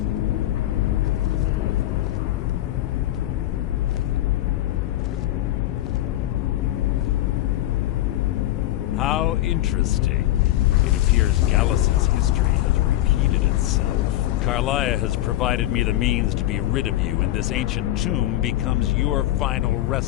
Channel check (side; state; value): right; quieter; 14.6 dB